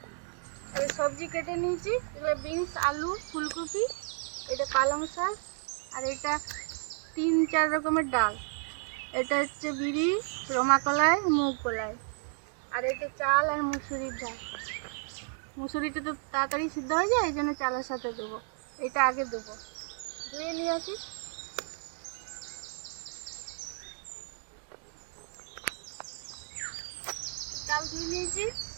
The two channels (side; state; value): left; silent; 56 dB below the other